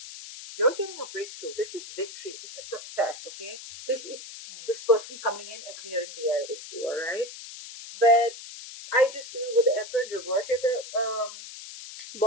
you're getting a breakthrough. This is victory. This is success. Okay, this is this person coming in and clearing the air with you. All right, but I just feel with the Emperor in reverse at the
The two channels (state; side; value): noise; left; hiss, 13 dB below the sound